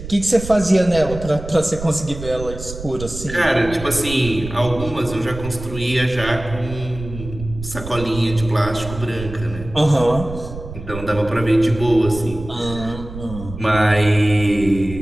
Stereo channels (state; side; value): noise; right; rumble, 11 dB below the sound